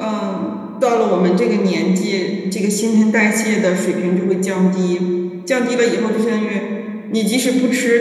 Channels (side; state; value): both; identical; correlation 1.00